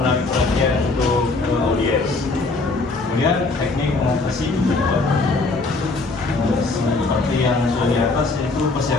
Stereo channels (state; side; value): quieter; right; 3.5 dB